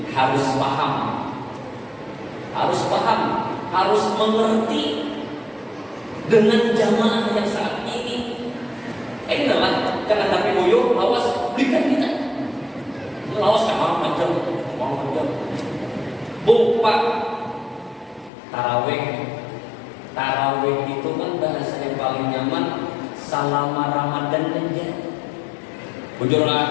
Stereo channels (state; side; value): drops out; right; at 18.3 s